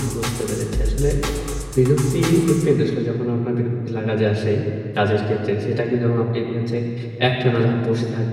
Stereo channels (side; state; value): both; identical; correlation 1.00